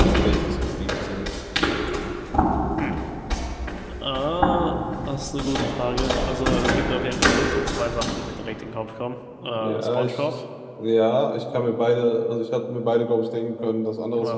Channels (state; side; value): identical; both; correlation 1.00